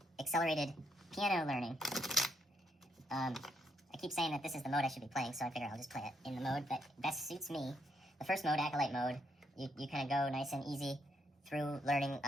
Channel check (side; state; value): both; normal; correlation 0.76